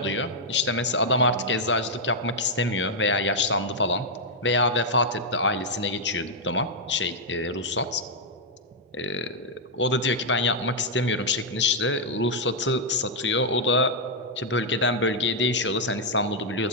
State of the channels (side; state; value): both; normal; correlation -0.03